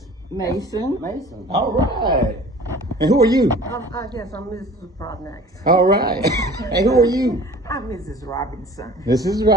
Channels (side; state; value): both; normal; correlation 0.45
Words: Mason. Mason. All right. And who are you? I guess I'm Mrs. Prodnax. All right. And who are you? I'm Mrs. Robinson. This is